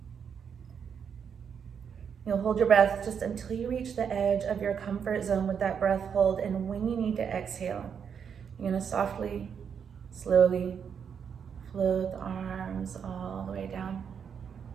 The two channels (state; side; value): quieter; left; 7.2 dB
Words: You'll hold your breath just until you reach the edge of your comfort zone with that breath hold, and when you need to exhale, you're gonna softly, slowly float the arms all the way down.